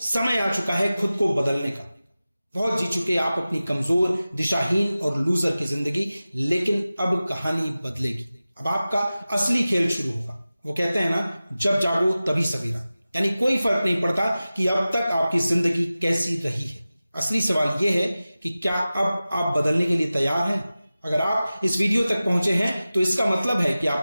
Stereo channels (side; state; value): both; inverted; correlation -0.96